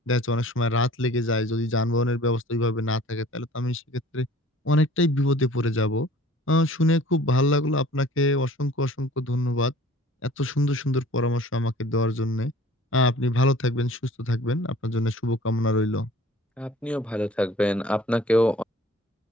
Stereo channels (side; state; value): both; normal; correlation 0.49